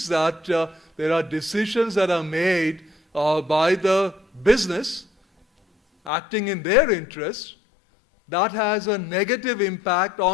that there are decisions that are made by the business acting in their interest that has a negative impact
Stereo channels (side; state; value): right; drops out; at 6.1 s